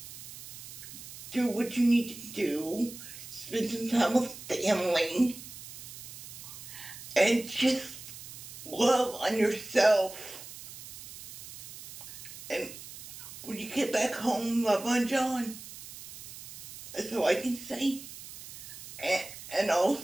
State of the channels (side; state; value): right; noise; hiss, 13 dB below the sound